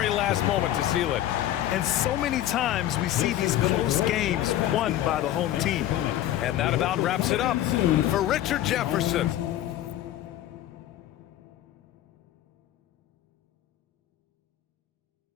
last moment to seal it. And so many times we see these close games won by the home team. And that about wraps it up for Richard Jefferson.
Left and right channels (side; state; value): right; quieter; 13.0 dB